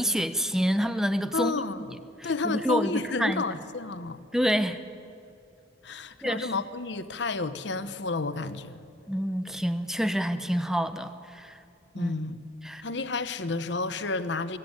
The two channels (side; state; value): both; normal; correlation 0.60